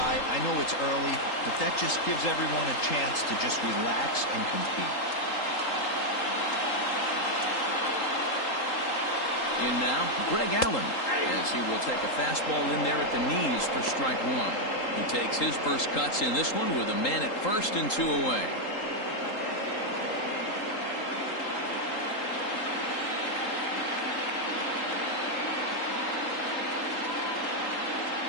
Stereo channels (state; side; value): late; right; 3.8 ms